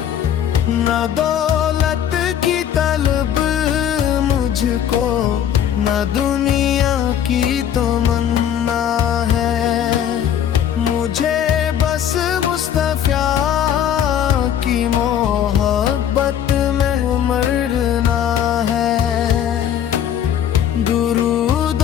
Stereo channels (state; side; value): quieter; right; 9.6 dB